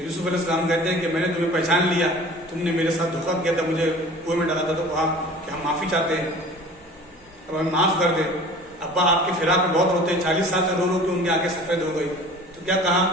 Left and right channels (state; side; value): normal; both; correlation 0.43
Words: یوسف علیہ السلام کہتے ہیں کہ میں نے تمہیں پہچان لیا، تم نے میرے ساتھ دھوکہ کیا تھا، مجھے کنویں میں ڈالا تھا، تو کہا کہ ہم معافی چاہتے ہیں، اب ہمیں معاف کر دیں۔ ابا آپ کے فراق میں بہت روتے ہیں، 40 سال سے رو رو کے ان کی آنکھیں سفید ہو گئی، تو کیا کہا